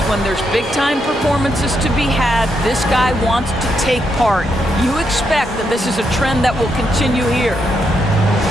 when there's big-time performances to be had, this guy wants to take part. You expect that this is a trend that will continue here.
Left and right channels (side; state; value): both; normal; correlation 0.80